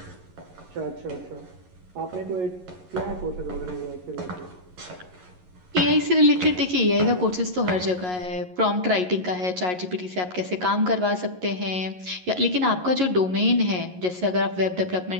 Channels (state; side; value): late; left; 11 ms